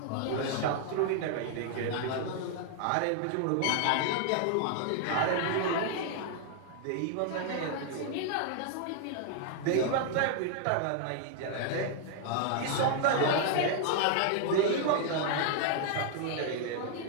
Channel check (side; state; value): both; different; correlation 0.00